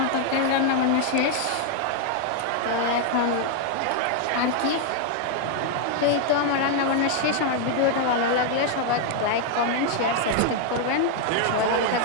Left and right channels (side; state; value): both; different; correlation 0.00